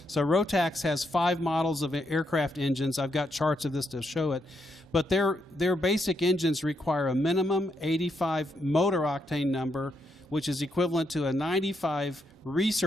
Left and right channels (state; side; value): normal; both; correlation 0.79